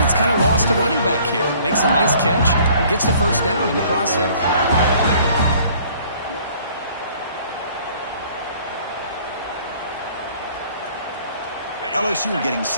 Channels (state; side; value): inverted; both; correlation -0.56